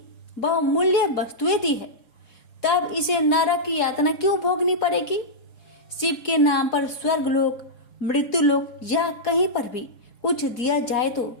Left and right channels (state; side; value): late; right; 4.8 ms